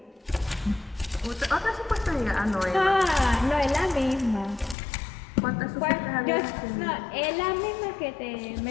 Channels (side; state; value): right; drops out; at 4.8 s